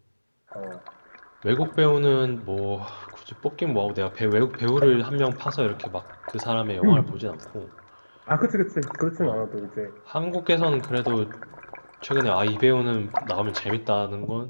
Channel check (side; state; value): both; inverted; correlation -1.00